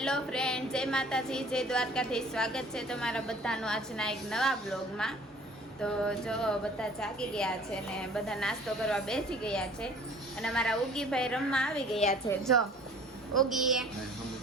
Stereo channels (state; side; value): normal; both; correlation 0.50